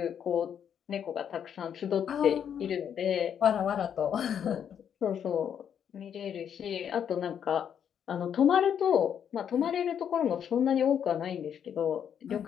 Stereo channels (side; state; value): right; quieter; 8.5 dB